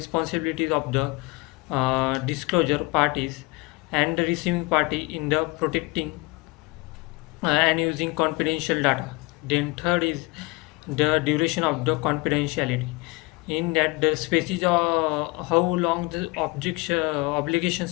of the disclosure parties and the receiving party in the protecting and using confidential data. Then third is the duration of the confidentiality. In that, the species how long the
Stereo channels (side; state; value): right; quieter; 25.0 dB